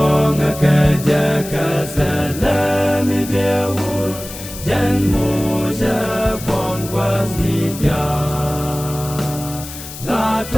ka ja ka sa la mi be u jan mo ja pon was ni ja la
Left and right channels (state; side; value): noise; left; hiss, 12 dB below the sound